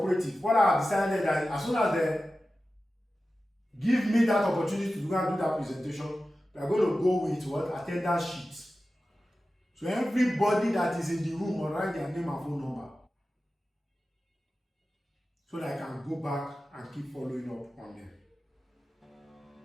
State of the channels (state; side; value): normal; both; correlation 0.94